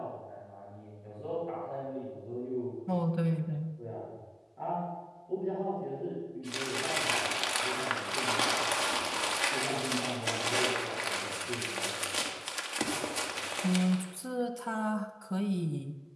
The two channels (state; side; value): identical; both; correlation 1.00